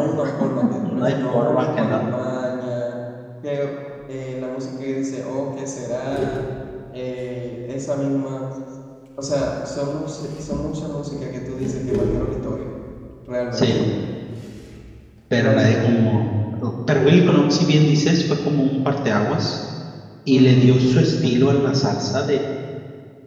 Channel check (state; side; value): identical; both; correlation 1.00